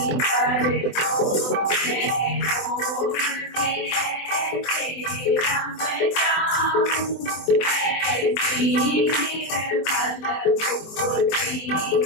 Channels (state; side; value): late; right; 24 ms